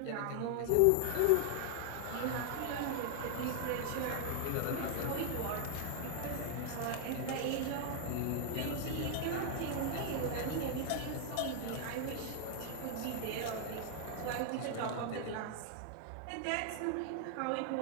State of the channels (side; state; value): both; different; correlation 0.00